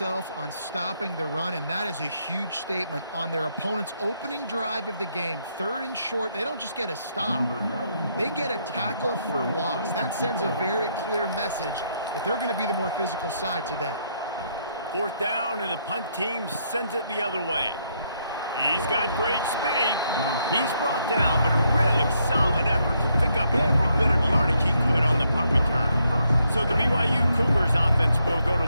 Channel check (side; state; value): both; inverted; correlation -0.75